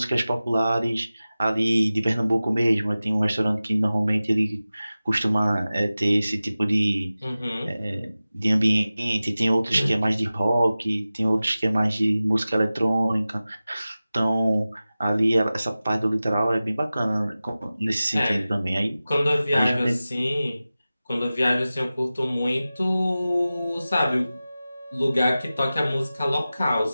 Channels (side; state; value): both; inverted; correlation -0.96